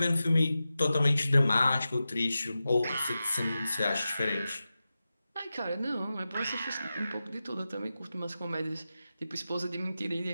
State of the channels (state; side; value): inverted; both; correlation -0.93